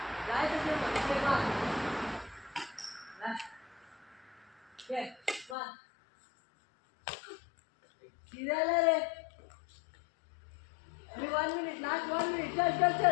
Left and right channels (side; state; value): right; drops out; at 5.6 s